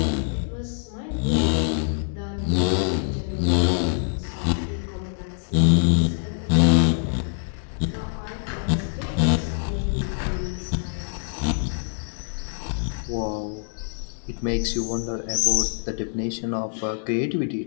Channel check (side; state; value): right; silent; digital silence